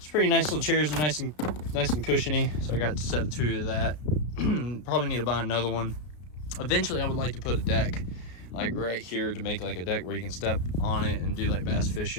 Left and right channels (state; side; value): late; right; 33 ms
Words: pretty nice little chairs, they're nice and cushiony, so I got to set 2 of that. Probably need to buy another one. Eventually I would like to put a deck like right here to make like a deck where you can step on it and do like bass